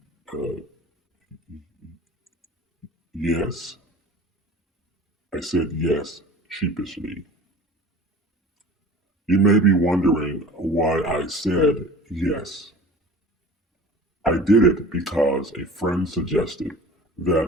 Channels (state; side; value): normal; both; correlation 0.41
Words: yes. I said yes sheepishly. You may be wondering why I said yes. I did it because a friend suggested